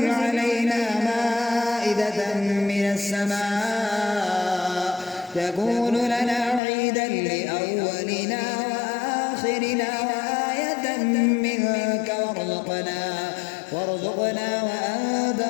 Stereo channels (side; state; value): right; drops out; at 6.6 s